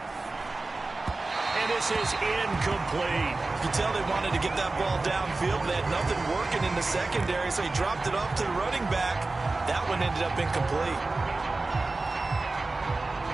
And this is incomplete. You can tell they wanted to get that ball downfield. They had nothing working in the secondary, so he dropped it off to the running back. That one ended up incomplete.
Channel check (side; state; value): left; quieter; 3.3 dB